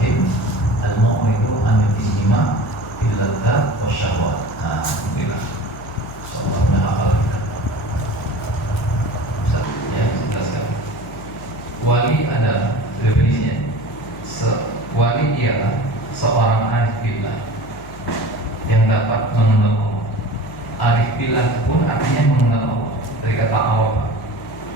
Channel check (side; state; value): left; noise; hum, 16 dB below the sound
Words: al-mu'ridu anil inhima fil ladzat wa syahwat. Alhamdulillah. Insyaallah berhafal kita. Ya, jelaskan. Wali adalah definisinya. Wali ialah seorang arif billah yang dapat mengenal Allah. Arif billah pun artinya mengenal Allah, dari kata araf,